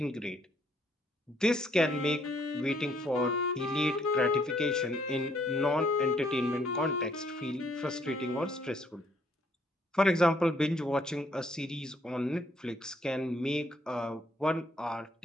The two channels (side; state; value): both; normal; correlation 0.67